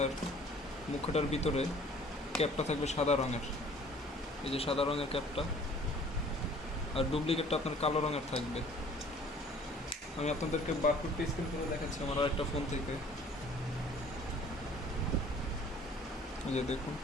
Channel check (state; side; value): normal; both; correlation 0.52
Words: মুখটার ভিতরে ক্যাপটা থাকবে সাদা রঙের, এই যে সাদা রঙের ক্যাপটা। আর ডুপ্লিকেটটা আপনার কালো রঙের থাকবে। আমি আপনাদেরকে বারকোডটা স্ক্যান করে দেখাচ্ছি আমার আরেকটা ফোন থেকে। এই যে দেখুন,